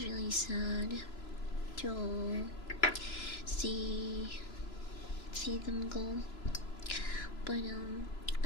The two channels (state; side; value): late; right; 3.0 ms